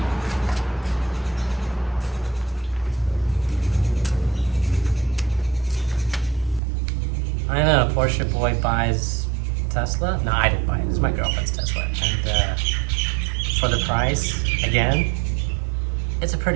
I know, a Porsche boy buys Tesla. No, I didn't buy it. It's my girlfriend's Tesla. And for the price, again, it's a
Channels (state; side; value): drops out; left; at 6.6 s